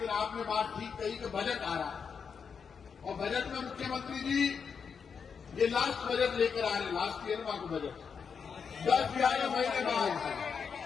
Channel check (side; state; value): right; quieter; 6.2 dB